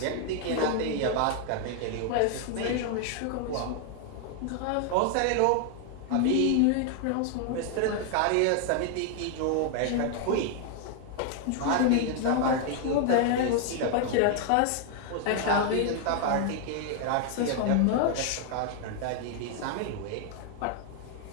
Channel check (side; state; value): both; different; correlation 0.00